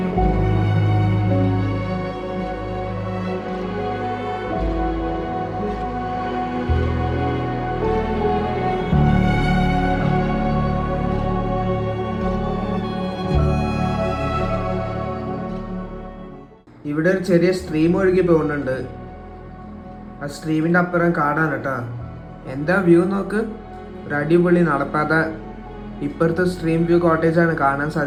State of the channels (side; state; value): both; identical; correlation 1.00